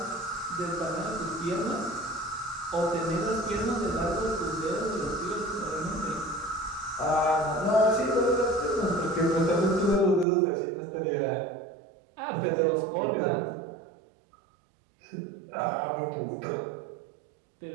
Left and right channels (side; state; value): left; drops out; at 10.2 s